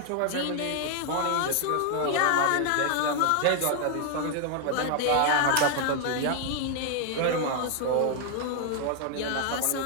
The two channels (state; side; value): different; both; correlation 0.00